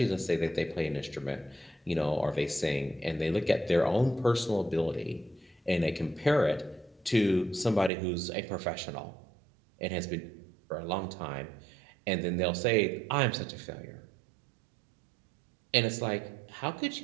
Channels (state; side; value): drops out; left; at 7.9 s